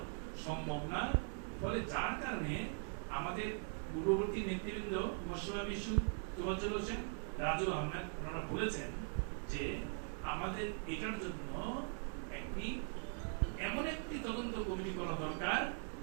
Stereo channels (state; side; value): silent; left; 50 dB below the other